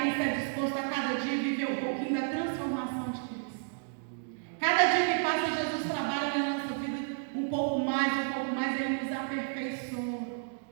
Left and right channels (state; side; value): silent; left; digital silence